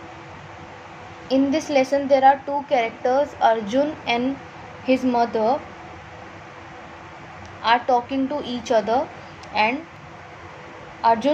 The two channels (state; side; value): identical; both; correlation 1.00